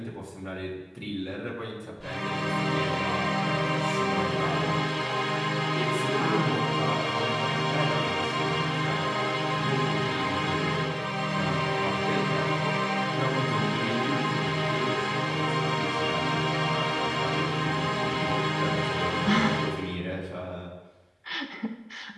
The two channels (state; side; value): identical; both; correlation 1.00